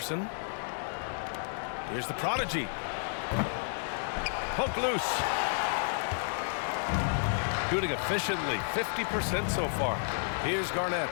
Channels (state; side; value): silent; right; digital silence